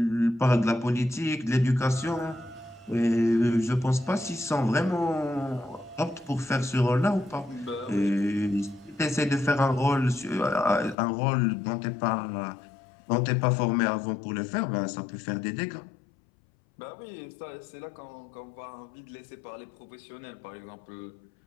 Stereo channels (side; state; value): right; drops out; at 11.0 s